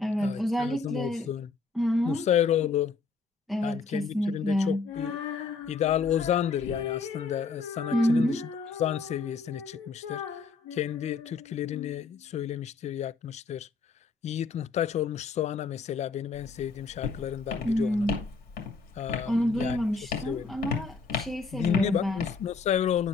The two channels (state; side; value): quieter; right; 4.5 dB